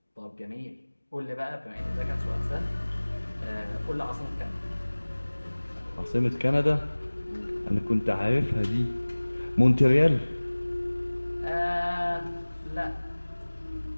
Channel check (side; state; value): both; inverted; correlation -1.00